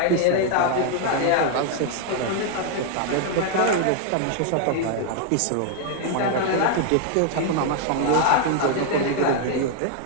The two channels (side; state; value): both; different; correlation 0.00